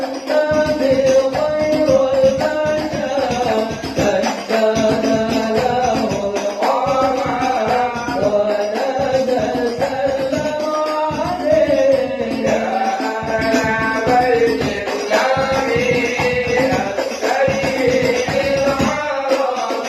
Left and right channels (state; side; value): identical; both; correlation 1.00